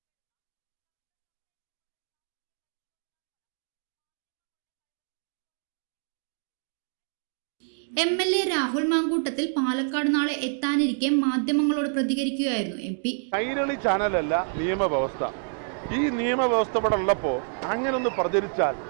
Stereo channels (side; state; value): left; silent; 59 dB below the other